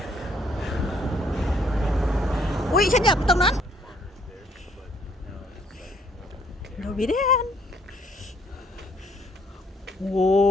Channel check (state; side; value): normal; both; correlation 0.66